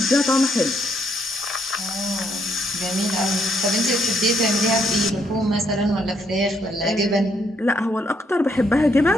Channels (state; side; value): normal; both; correlation 0.73